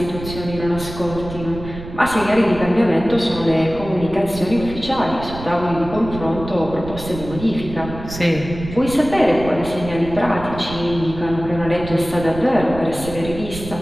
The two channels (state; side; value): noise; right; rumble, 11 dB below the sound